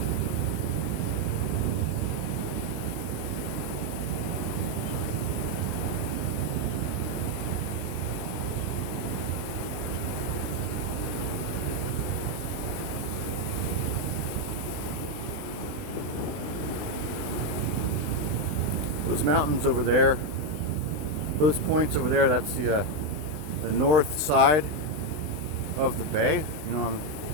mountains over there, those points over there, that's the north side of the bay. You know,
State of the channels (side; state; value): left; late; 20 ms